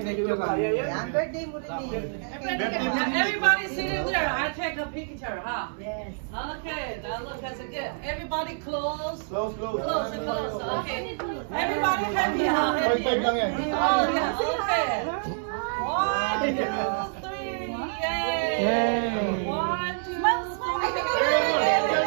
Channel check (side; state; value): left; silent; digital silence